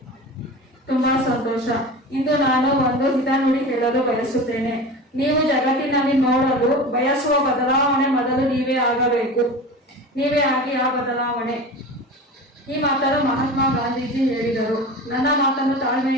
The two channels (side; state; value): both; normal; correlation 0.32